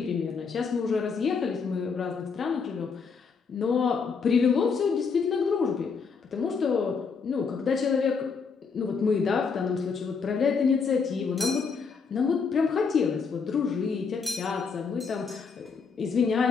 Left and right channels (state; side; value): quieter; right; 5.4 dB